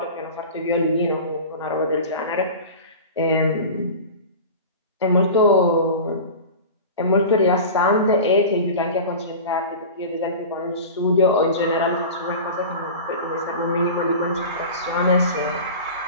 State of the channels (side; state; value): both; inverted; correlation -0.33